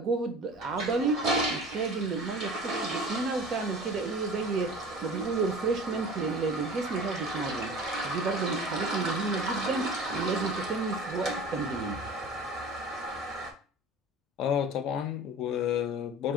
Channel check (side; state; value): both; normal; correlation 0.39